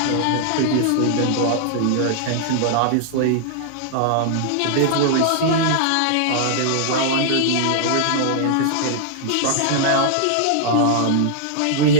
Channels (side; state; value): both; different; correlation -0.01